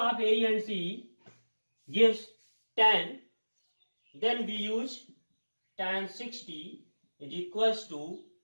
A and C gives 10. Then we use tan 60 is equals to,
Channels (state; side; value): inverted; both; correlation -1.00